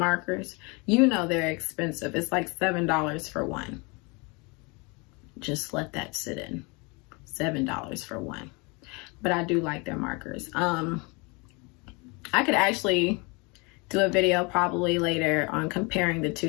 you know they're expensive. It's like $7 for one. Just let that sit in. $7 for one. But I do like their markers. I could actually do a video probably later on comparing the two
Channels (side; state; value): right; quieter; 29.1 dB